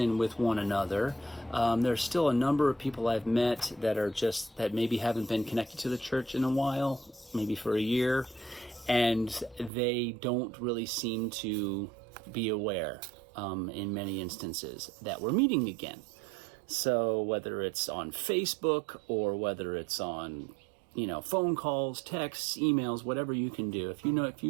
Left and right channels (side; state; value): left; drops out; at 9.7 s